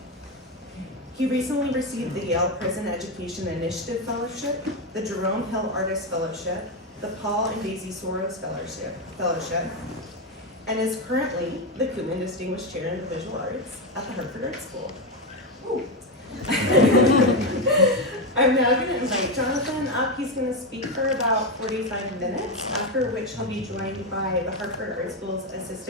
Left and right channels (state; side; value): normal; both; correlation 0.10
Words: He recently received the Yale Prison Education Initiative Fellowship, the Jerome Hill Artist Fellowship, the Paul and Daisy Soros Fellowship, and is currently the Koopman Distinguished Chair in the Visual Arts at the Hartford Art School. I'm now going to invite Jonathan up. He's going to speak for about 45 minutes, after which he'll be joined by the Hartford Art School's